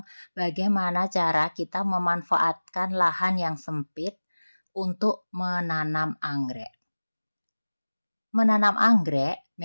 bagaimana cara kita memanfaatkan lahan yang sempit untuk menanam anggrek. Menanam anggrek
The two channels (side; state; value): both; inverted; correlation -1.00